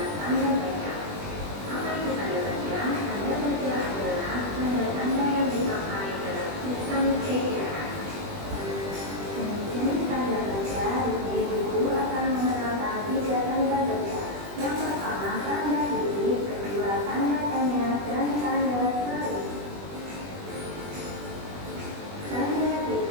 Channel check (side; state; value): left; late; 20 ms